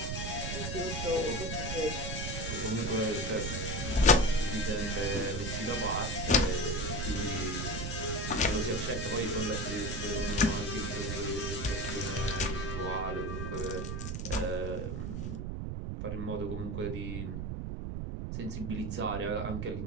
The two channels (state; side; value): noise; right; rumble, 3 dB below the sound